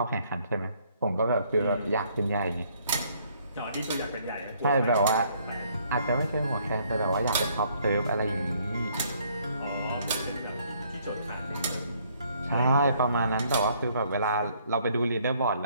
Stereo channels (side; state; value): both; inverted; correlation -0.65